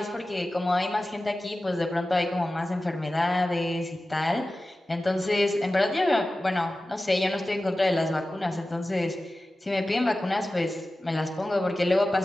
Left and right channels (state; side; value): normal; both; correlation 0.95